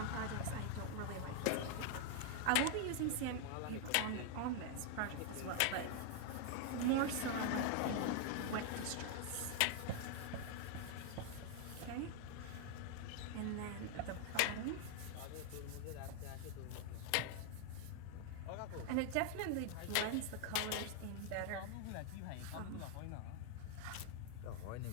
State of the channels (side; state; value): both; different; correlation 0.00